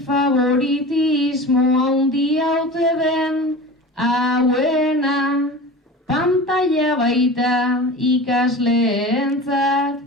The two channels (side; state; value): both; normal; correlation 0.34